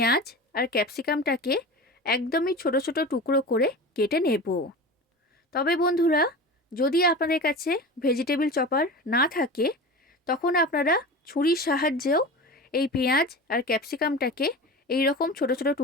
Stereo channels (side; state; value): both; normal; correlation 0.31